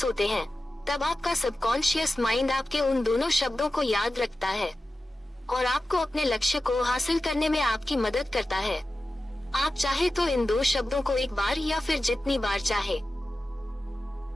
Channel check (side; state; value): both; normal; correlation 0.94